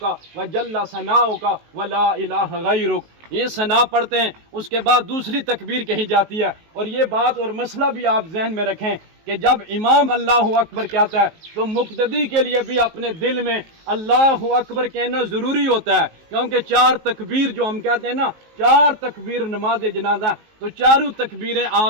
و جل ثناؤک و لا الہ غیرک. یہ ثنا پڑھتے ہیں، اس کے بعد دوسری تکبیر کہی جاتی ہے. اور یہ بات اور مسئلہ بھی آپ ذہن میں رکھیں کہ جب امام اللہ اکبر کہتا ہے تو مقتدی کے لیے بھی اپنے دل میں اللہ اکبر کہنا ضروری ہوتا ہے، کیونکہ 4 تکبیر جو ہم کہتے ہیں نا، 4 تکبیر نماز جنازہ، تو چاروں تکبیریں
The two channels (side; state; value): left; late; 19 ms